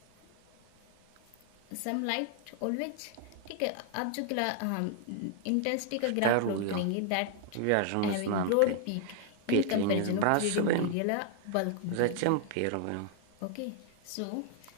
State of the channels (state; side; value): different; both; correlation 0.00